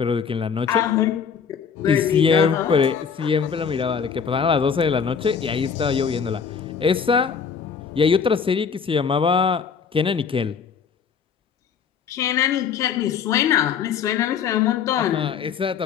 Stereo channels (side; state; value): right; quieter; 6.6 dB